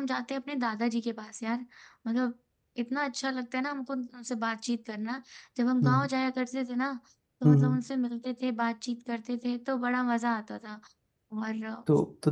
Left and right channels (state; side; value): identical; both; correlation 1.00